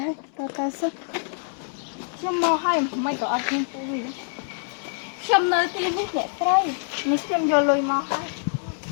ហើយទៅសិខ្ញុំមកហើយមិនក៏អត់ខ្ញុំពូវាខ្ញុំនៅទីនេះអ្នកស្រីនេះខ្ញុំយកលុយមកហើយ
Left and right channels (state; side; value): silent; right; digital silence